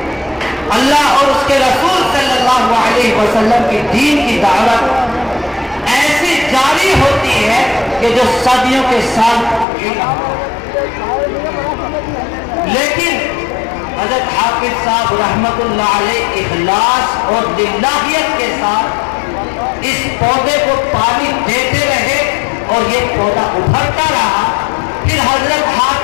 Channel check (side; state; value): right; drops out; at 9.7 s